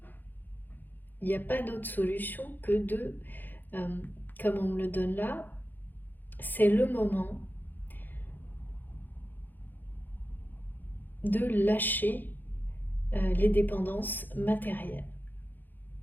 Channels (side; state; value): right; late; 0.087 ms